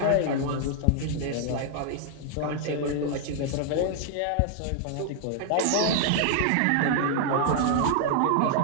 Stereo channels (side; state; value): both; different; correlation 0.00